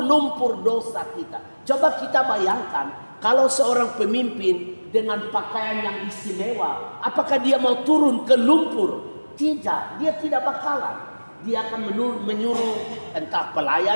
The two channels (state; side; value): inverted; both; correlation -1.00